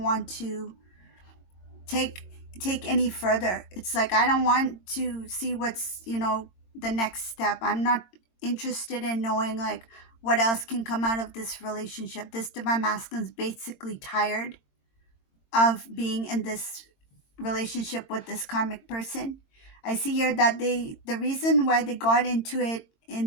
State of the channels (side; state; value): right; late; 22 ms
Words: want to take any further. It's like, I don't want to see what's, the next step. I'm not interested in knowing like what else can come out of this relationship. This divine masculine is basically tired of being in this relationship with this karmic person. I see here that the reason why they got into it